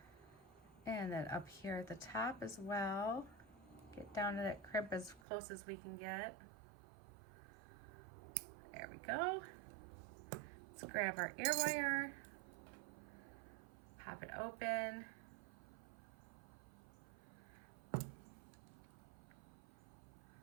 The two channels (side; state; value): left; drops out; at 5.2 s